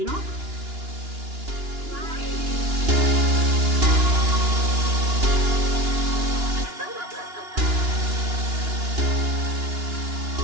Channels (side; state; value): left; late; 2.9 ms